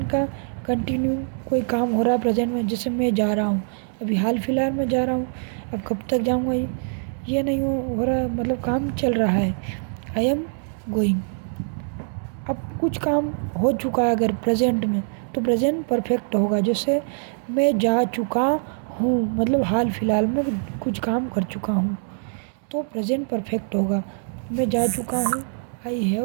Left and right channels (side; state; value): left; silent; digital silence